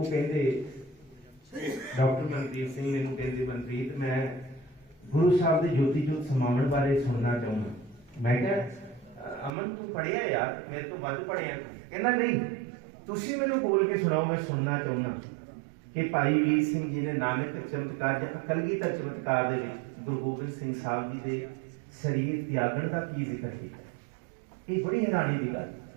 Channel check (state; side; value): drops out; left; at 9.5 s